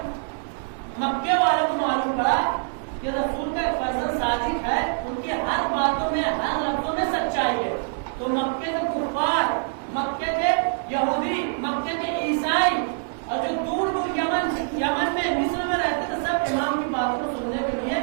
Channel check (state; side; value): silent; left; digital silence